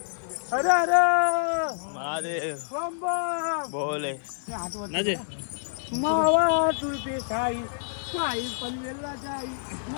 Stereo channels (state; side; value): silent; right; 58 dB below the other